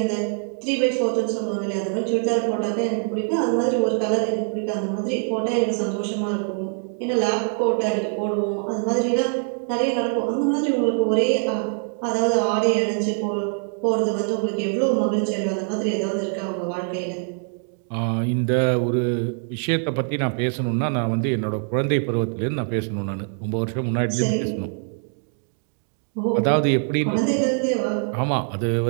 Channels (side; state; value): left; silent; 58 dB below the other